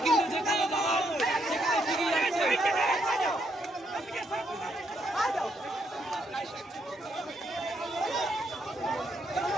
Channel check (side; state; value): both; normal; correlation 0.75